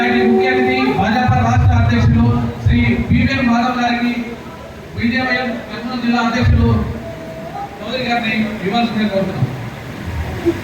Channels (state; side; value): identical; both; correlation 1.00